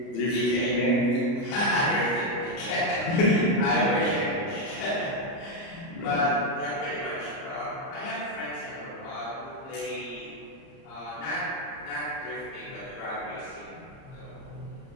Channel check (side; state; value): right; late; 30 ms